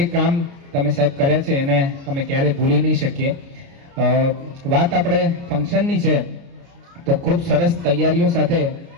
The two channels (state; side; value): late; left; 29 ms